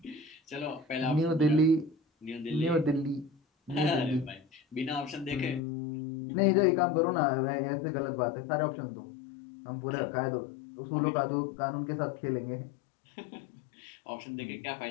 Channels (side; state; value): right; drops out; at 5.6 s